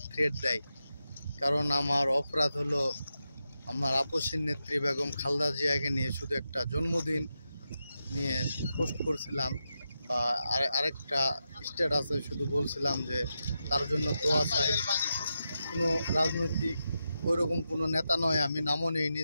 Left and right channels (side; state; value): both; inverted; correlation -0.88